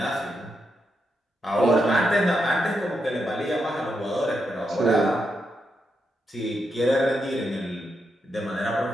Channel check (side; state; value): both; normal; correlation 0.83